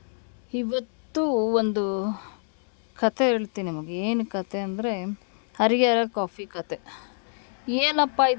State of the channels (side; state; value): right; silent; 60 dB below the other